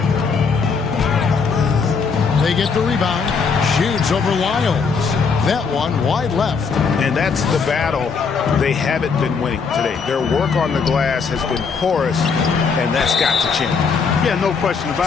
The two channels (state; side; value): quieter; right; 5.3 dB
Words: They get the rebound. Shoots over Lyles. That one wide left. And that's the battle they haven't been winning today. Their work on the glass has been porous, and that's got to change. Yeah, no question